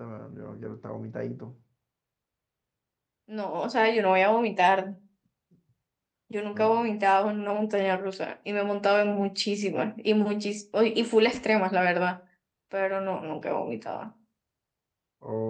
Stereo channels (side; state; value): both; identical; correlation 1.00